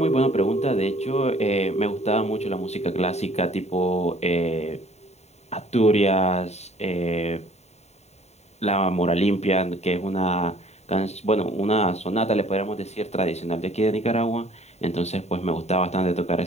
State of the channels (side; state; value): right; late; 0.32 ms